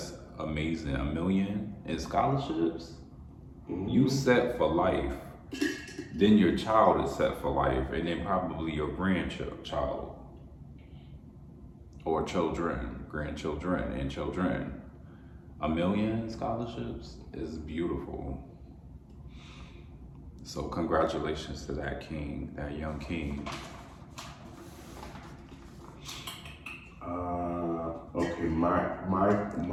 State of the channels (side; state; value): both; identical; correlation 1.00